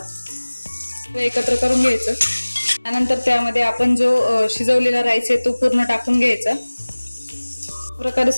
एकत्र करून घ्यायचं. त्यानंतर त्यामध्ये आपण जो शिजवलेला राईस आहे तो पूर्ण टाकून घ्यायचा. प्रकारे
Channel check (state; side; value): inverted; both; correlation -1.00